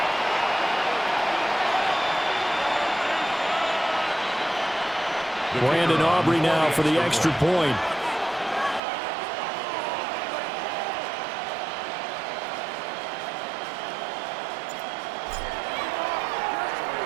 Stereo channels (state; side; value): drops out; left; at 8.8 s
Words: Brandon Aubrey now for the extra point.